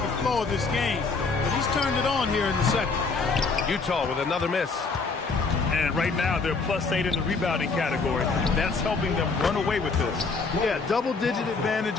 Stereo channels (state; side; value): quieter; right; 4.4 dB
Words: flow of this game, but he's turned it on here in the second. Utah with another miss. And right now, they're +8 in the rebounding category. That's helping them run away with this. Yeah, double-digit advantage